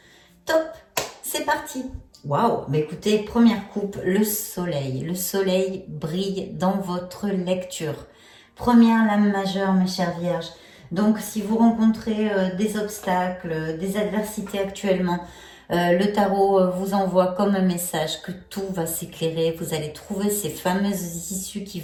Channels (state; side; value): identical; both; correlation 1.00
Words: Top, c'est parti. Waouh, bah écoutez, première coupe, le soleil. Le soleil brille dans votre lecture. Première lame majeure, mes chères Vierges. Donc, si vous rencontrez des obstacles, des adversités actuellement, le tarot vous envoie comme un message que tout va s'éclairer. Vous allez trouver ces fameuses issues qui